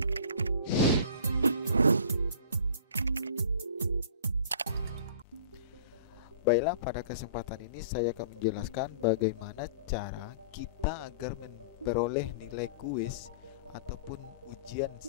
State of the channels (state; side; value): inverted; both; correlation -0.44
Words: Baiklah, pada kesempatan ini saya akan menjelaskan bagaimana cara kita agar memperoleh nilai kuis ataupun ujian